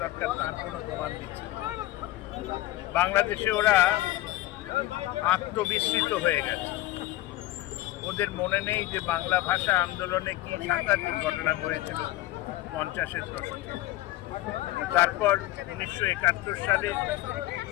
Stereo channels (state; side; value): quieter; right; 16.3 dB